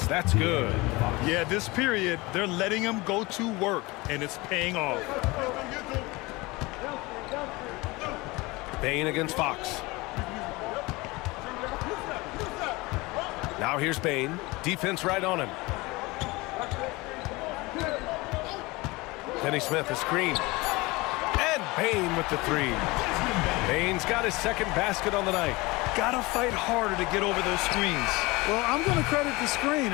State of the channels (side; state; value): right; quieter; 22.9 dB